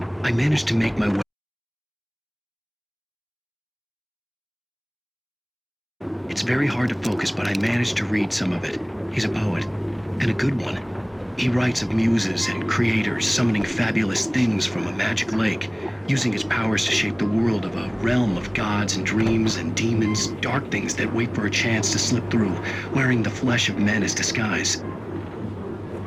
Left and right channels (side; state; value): both; identical; correlation 1.00